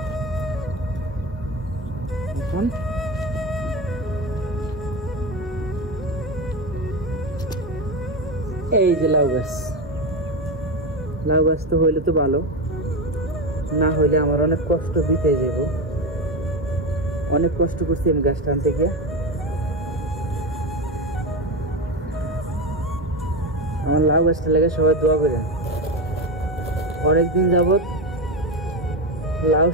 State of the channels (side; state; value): both; normal; correlation 0.17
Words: এখন এই যে লাউ গাছ, লাউ গাছ তো হইলে তো ভালো, না হইলে আমার অনেক কষ্ট বিতে যাব। অনেক কষ্ট করছি আমি গাছ টানতে গিয়ে। আমার লাউ গাছটা লেগে সবাই দোয়া করেন। অনেকদিন যাবত লাউ